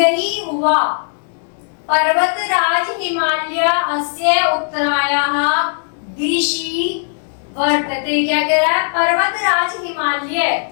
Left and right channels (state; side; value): silent; right; digital silence